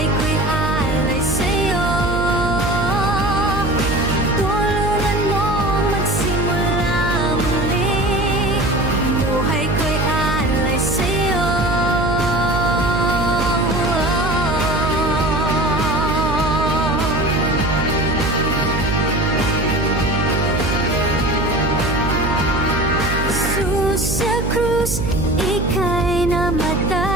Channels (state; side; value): noise; right; hum, 2 dB below the sound